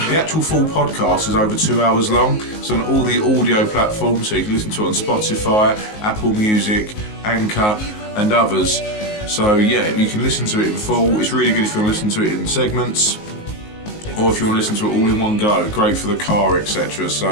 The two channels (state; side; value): late; right; 19 ms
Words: The actual full podcast is over 2 hours long. It's on all the audio platforms, so you can listen to it on Spotify, Apple Music, Anchor, and others. So yeah, you can listen to it in full. It's really good if you want to listen to it in segments, or if you want to listen to it all in one go. Great for the car, etc.